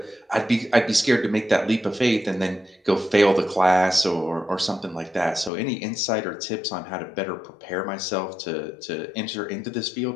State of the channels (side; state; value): right; drops out; at 5.5 s